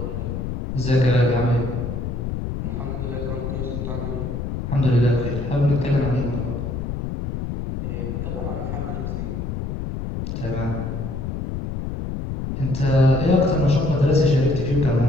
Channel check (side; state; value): left; noise; rumble, 4 dB below the sound